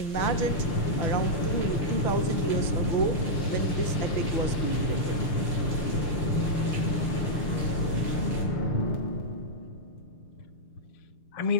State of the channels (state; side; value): late; right; 6.5 ms